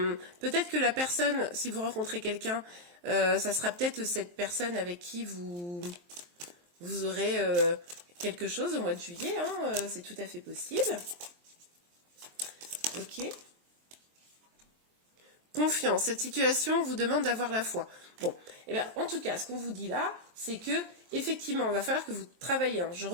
que la personne, si vous rencontrez quelqu'un, ça sera peut-être cette personne avec qui vous aurez quelque chose au mois de juillet. Hein, c'est tout à fait possible. Ok. Confiance. Cette situation vous demande d'avoir la foi. Bon, et bien, en tout cas, ce qu'on vous dit là, c'est que effectivement, il va falloir que vous travaillez. Hein. Je ne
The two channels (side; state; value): left; late; 23 ms